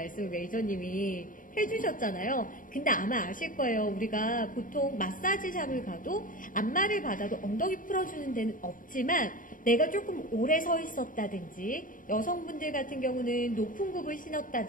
매니저님이 해주셨잖아요. 근데 아마 아실 거예요. 우리가 보통 마사지샵을 가도 안마를 받아도 엉덩이 풀어주는 데는 없지만 내가 조금 오래 서 있었다든지 여성분들 같은 경우는 높은 굽을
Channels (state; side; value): late; right; 0.39 ms